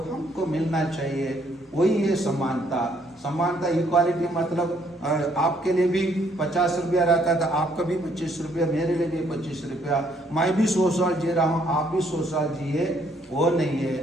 हमको मिलना चाहिए, वही है समानता। समानता इक्वालिटी मतलब आपके लिए भी 50 रुपया रहता था, आपका भी 25 रुपया, मेरे लिए भी 25 रुपया, मैं भी 100 साल जी रहा हूँ, आप भी 100 साल जिए, वो नहीं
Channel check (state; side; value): normal; both; correlation 0.68